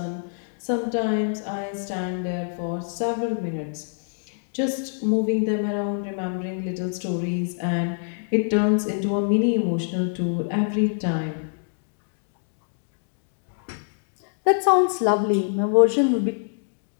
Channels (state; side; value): silent; right; 62 dB below the other